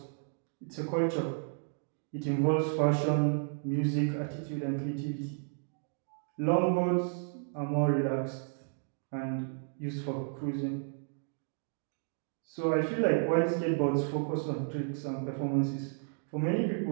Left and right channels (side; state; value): left; silent; 56 dB below the other